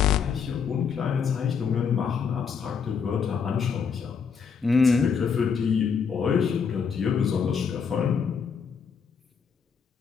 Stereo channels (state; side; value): quieter; right; 6.4 dB